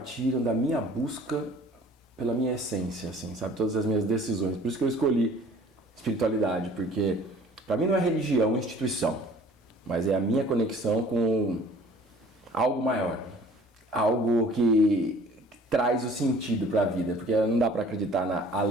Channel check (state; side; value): normal; both; correlation 0.51